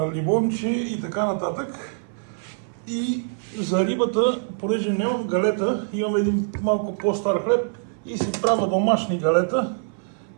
лимонче и така нататък. И за рибата, понеже нямам галета, имам един малко по-стар хлеб и си правя домашни галета,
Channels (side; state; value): left; silent; 58 dB below the other